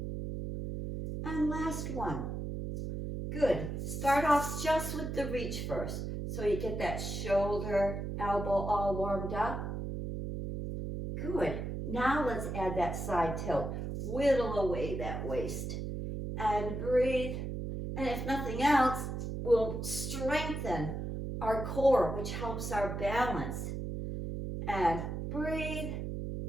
And last one. Good. Start off just with the reach first. So you get that shoulder, elbow all warmed up. Good. Now let's add that side tilt. Whittle away that waist. And breathe. And if nothing else, we'll strengthen our core, which helps our balance. And breathe.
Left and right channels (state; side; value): noise; right; hum, 4 dB below the sound